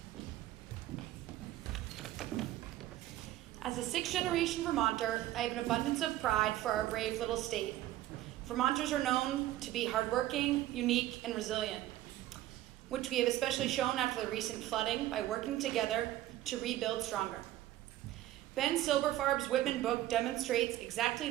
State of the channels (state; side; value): quieter; left; 14.6 dB